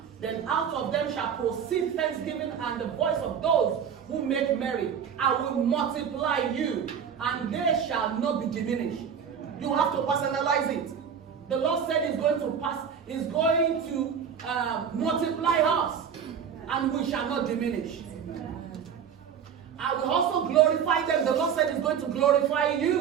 Then out of them shall proceed thanksgiving and the voice of those who make merry. I will multiply you, and they shall not be diminished. You have to personalize it. The Lord said He's going to multiply us, and we shall not diminish. I will also glorify them. The Lord said He's going to glorify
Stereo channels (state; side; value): quieter; left; 7.7 dB